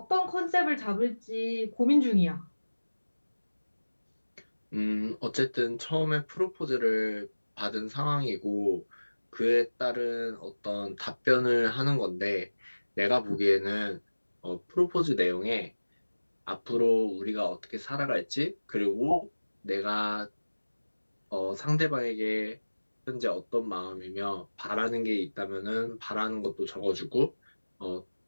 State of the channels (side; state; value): both; inverted; correlation -1.00